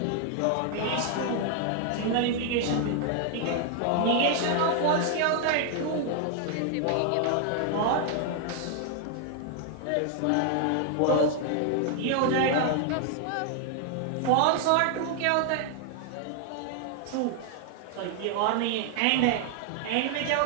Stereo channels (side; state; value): both; different; correlation 0.00